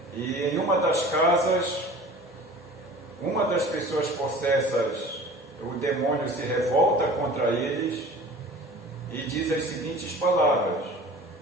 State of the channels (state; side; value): normal; both; correlation 0.42